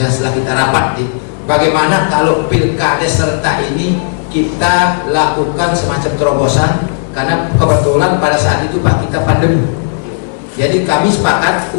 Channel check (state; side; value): silent; right; digital silence